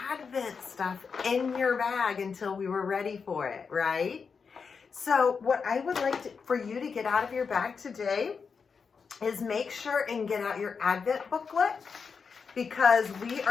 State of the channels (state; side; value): quieter; right; 5.6 dB